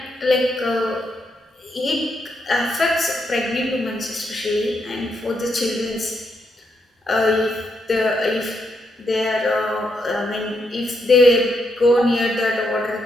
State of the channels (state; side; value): normal; both; correlation 0.79